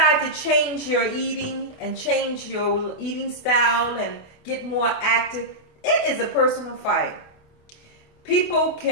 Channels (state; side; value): late; right; 28 ms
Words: to change your eating and change your eating style and get more active, it is a personal fight. People